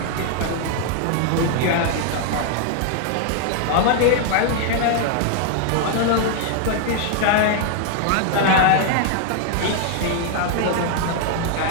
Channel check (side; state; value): both; different; correlation 0.00